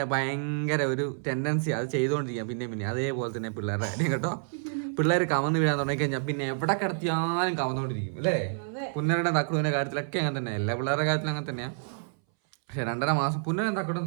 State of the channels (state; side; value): silent; left; 59 dB below the other